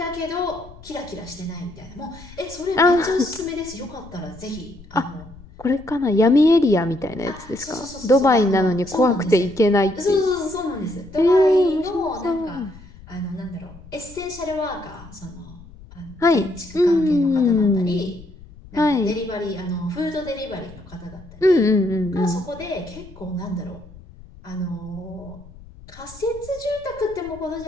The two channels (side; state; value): left; noise; rumble, 20 dB below the sound